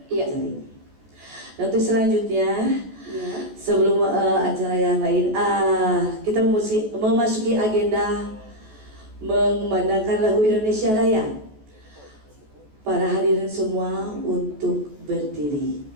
Iya. acara ini. Dan untuk selanjutnya, Ya. sebelum acara yang lain, kita memasuki agenda mengumandangkan lagu Indonesia Raya. Para hadirin semua untuk berdiri.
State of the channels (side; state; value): left; late; 14 ms